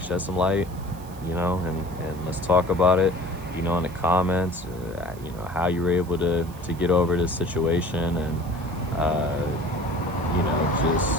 shed some light, you know, and let's talk about it, you know, in the comments, you know, how you were able to get over this situation, and, you know,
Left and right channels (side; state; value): right; noise; hiss, 22 dB below the sound